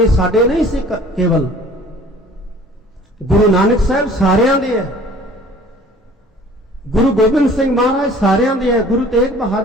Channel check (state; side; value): normal; both; correlation 0.50